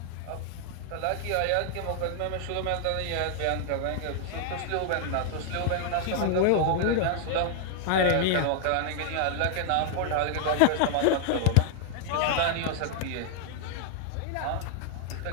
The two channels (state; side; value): different; both; correlation 0.00